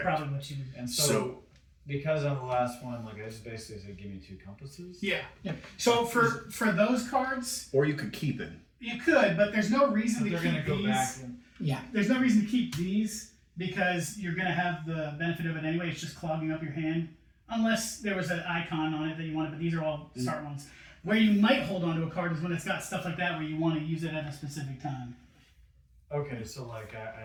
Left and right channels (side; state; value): both; identical; correlation 1.00